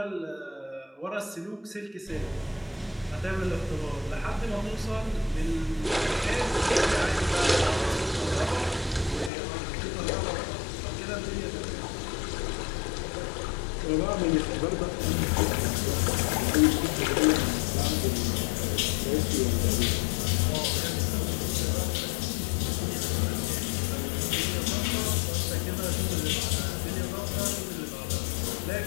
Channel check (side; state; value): right; drops out; at 9.3 s